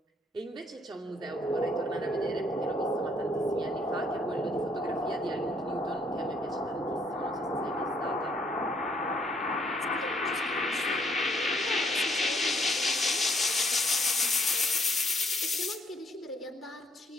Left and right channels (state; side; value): normal; both; correlation 0.68